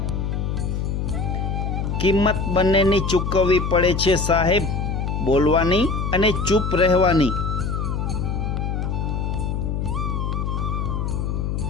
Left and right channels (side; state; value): left; noise; hum, 1 dB below the sound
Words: કિંમત બંનેની ચૂકવવી પડે છે સાહેબ, બોલવાની અને ચૂપ રહેવાની.